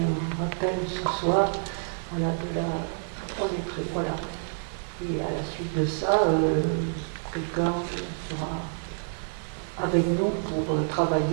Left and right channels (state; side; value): silent; left; digital silence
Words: rappel ce soir, voilà, on est prêt, voilà. Et à la suite de ça, quelqu'un sera avec nous pour